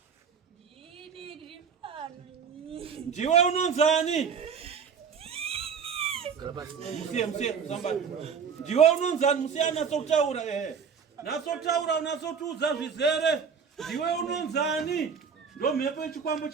Ndiwe unonzani? Musiye sambani. Ndiwe unonzani musiye anatsotaura Natsotaura unatsotuudza zvizere. Ndiwe unonzani? Ndo mhepo yechikwambo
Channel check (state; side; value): quieter; left; 6.5 dB